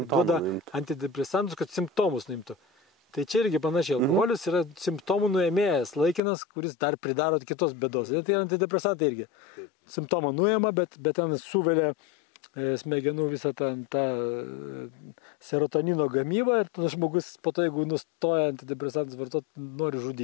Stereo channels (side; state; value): right; drops out; at 6.2 s